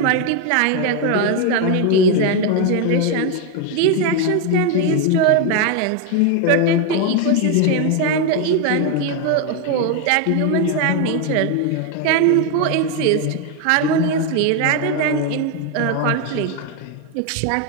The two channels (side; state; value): both; different; correlation 0.01